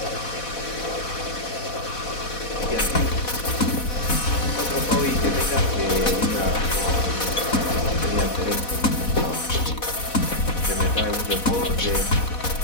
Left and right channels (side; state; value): right; late; 4.1 ms